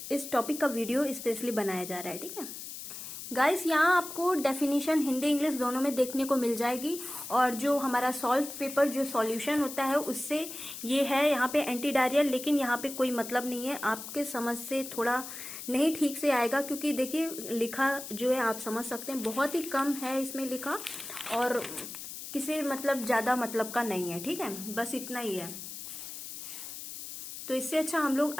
इस टॉपिक का वीडियो स्पेशली बनाया जा रहा है. ठीक है गाइस, यहाँ आपको डेफिनेशन हिंदी इंग्लिश दोनों में देखने को मिल जाएगी और जो हमारा सॉल्व पेपर जो सॉल्यूशन होता है उससे ये है यहाँ पे एंटी डायरियल, लेकिन यहाँ पे कोई मतलब नहीं है. आपके समझ से थोड़ा नहीं ठीक से आएगा क्योंकि देखिए लिखा जो है आप समझ सकते हैं बहुत ही कम है इसमें लिखा और किसी मतलब ज्यादा मतलब का नहीं है. ठीक है, बस इतना ही है. तो इससे अच्छा हम लोग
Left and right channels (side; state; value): left; noise; hiss, 10 dB below the sound